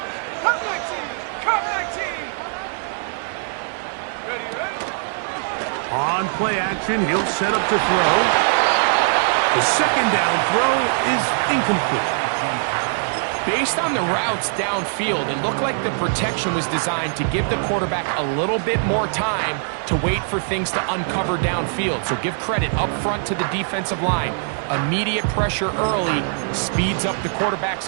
Cut 19, cut 19. Ready. On play action, he'll set up to throw. The 2nd down throw is incomplete. Based on the routes downfield, it looked like the protection was designed to give the quarterback a little bit more time to wait for things to uncover downfield. So give credit up front to the defensive line. Immediate pressure early speeds up the quarterback's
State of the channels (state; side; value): silent; left; digital silence